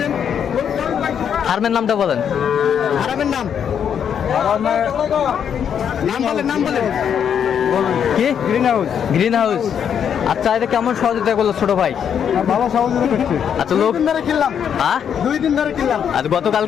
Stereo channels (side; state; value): right; quieter; 8.2 dB